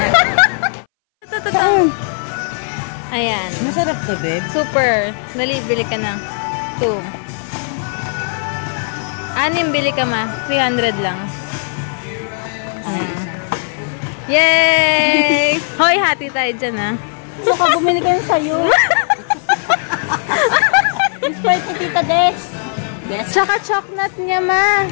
Ayan. Masarap to, babe. Super. Dali, bili ka na. 2. 6 bili ka ma. 300 lang. Yay! Hoy, hati tayo dyan ha. Baka bumili ka yun sa'yo. Sprite ni Tita Des. Tsaka chocolate niya ma.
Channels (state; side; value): silent; right; 63 dB below the other